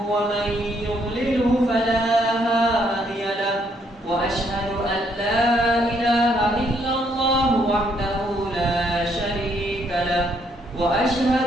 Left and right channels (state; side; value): normal; both; correlation 0.71